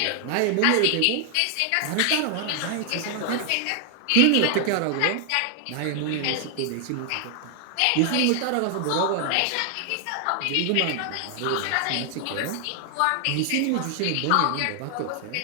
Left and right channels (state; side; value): different; both; correlation 0.00